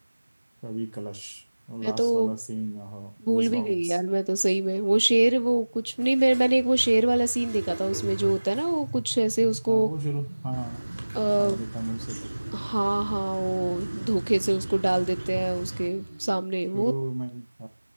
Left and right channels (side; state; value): both; inverted; correlation -1.00